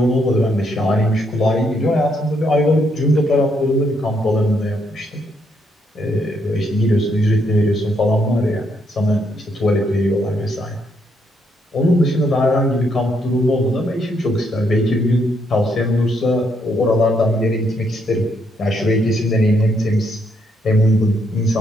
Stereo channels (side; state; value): both; normal; correlation 0.75